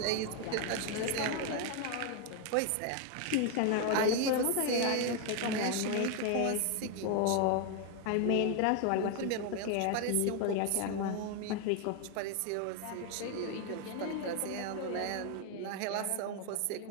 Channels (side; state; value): both; different; correlation 0.00